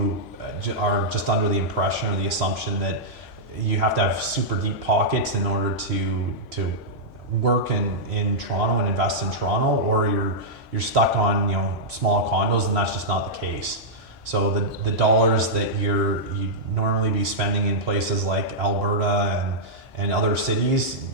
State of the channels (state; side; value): normal; both; correlation -0.09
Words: are just under the impression or the assumption that you have to have super deep pockets in order to work in Toronto and invest in Toronto, or you're stuck on small condos, and that's just not the case. So the dollars that you normally be spending in places like Alberta and other cities,